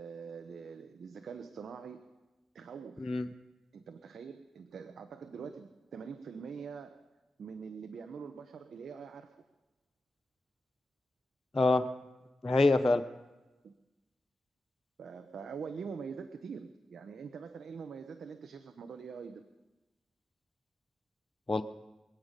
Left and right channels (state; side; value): normal; both; correlation 0.90